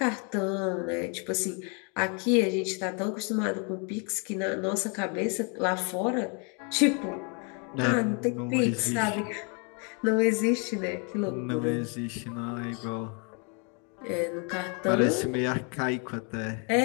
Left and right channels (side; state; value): right; quieter; 36.4 dB